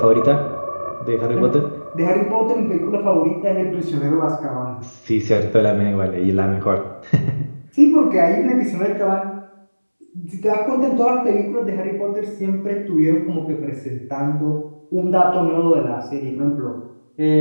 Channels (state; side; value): inverted; both; correlation -1.00